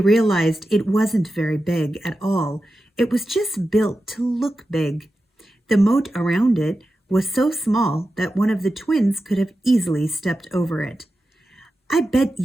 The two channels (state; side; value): normal; both; correlation 0.92